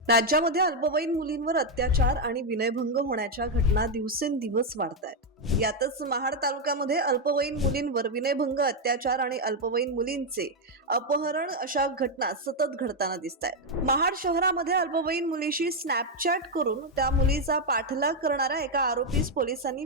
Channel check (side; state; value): both; normal; correlation 0.02